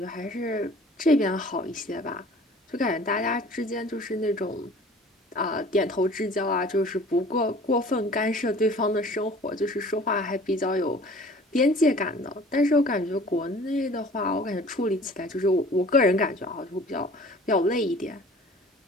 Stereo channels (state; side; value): normal; both; correlation 0.48